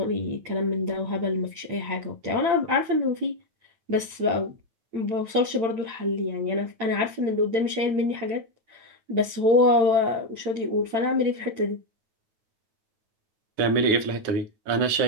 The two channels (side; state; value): left; late; 8.8 ms